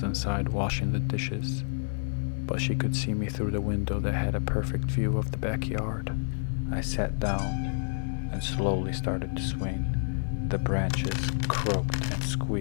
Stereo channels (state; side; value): silent; right; digital silence